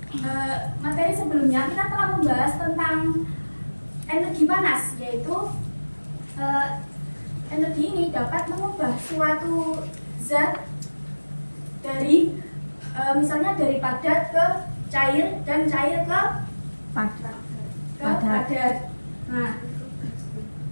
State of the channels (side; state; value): both; inverted; correlation -1.00